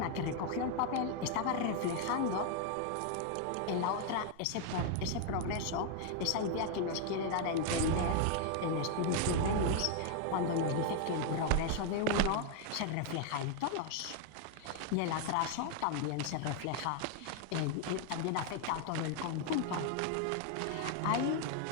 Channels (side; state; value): both; different; correlation 0.00